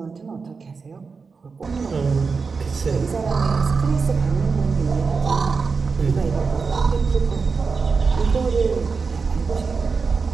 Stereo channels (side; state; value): left; quieter; 4.9 dB